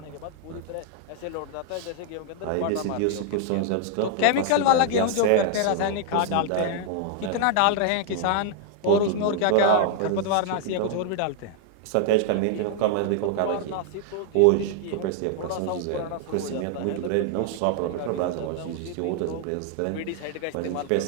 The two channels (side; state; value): both; different; correlation 0.00